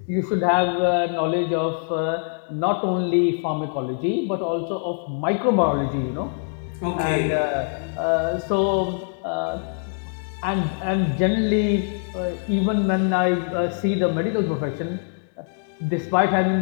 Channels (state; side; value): silent; right; 63 dB below the other